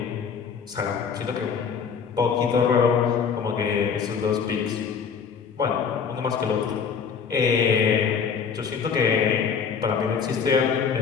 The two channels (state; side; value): quieter; right; 6.4 dB